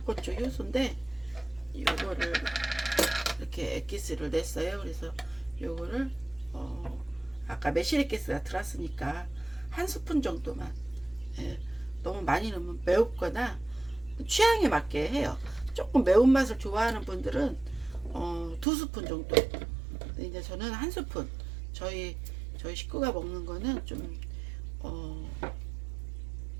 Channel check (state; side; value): drops out; left; at 18.7 s